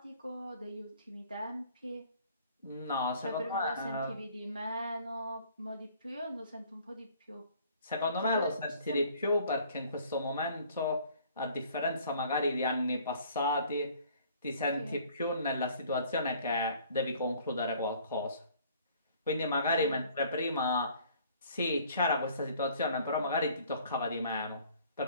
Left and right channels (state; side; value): inverted; both; correlation -0.56